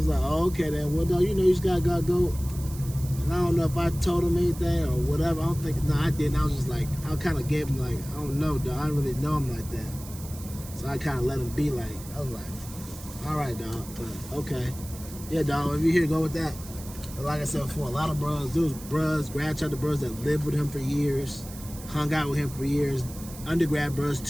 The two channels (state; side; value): noise; right; hiss, 16 dB below the sound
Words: like, oh, okay then. Well, dog, you just gotta go. And I don't know if I told him anything or whatever. I don't think. No, I didn't. I was just like, I kind of gave him like, I don't know, dog. I don't really know him like that. So I kind of let him be like. I was like, all right, dog. But okay, yeah, dog. If you here, go with that. But like I said before, a lot of bros, those bros, grad chapter bros that lived with him for years, hung out with him for years, undergrad bros